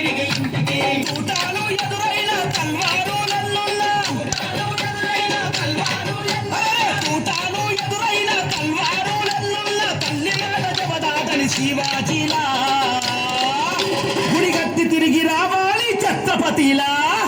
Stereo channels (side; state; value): both; identical; correlation 1.00